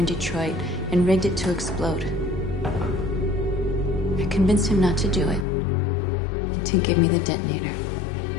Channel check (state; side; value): drops out; right; at 5.5 s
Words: Detroit and rigged it to explode. I convinced him not to do it, to give me the detonator.